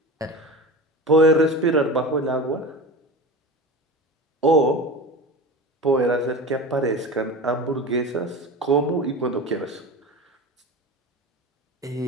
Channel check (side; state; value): both; normal; correlation 0.31